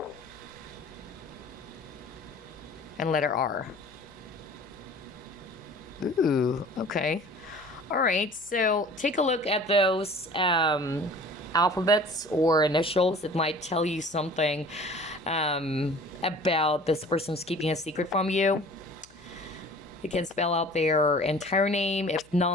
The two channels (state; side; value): noise; left; hum, 28 dB below the sound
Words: and letter R. Ooh, okay. All right, so take a look at those alphabets or initials. It might tell you something about this person's keeping a secret from you. You can spell out their entire name, if